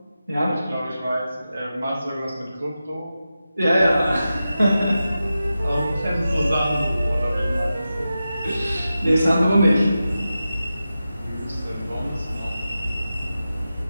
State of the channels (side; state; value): both; inverted; correlation -0.92